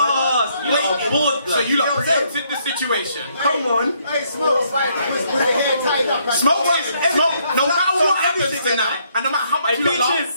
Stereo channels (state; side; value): inverted; both; correlation -0.70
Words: So you lot preempted the situation. Come on. Hey, Smoke, with the hair tied up. Smoke. No matter what happens tonight, and no matter how much you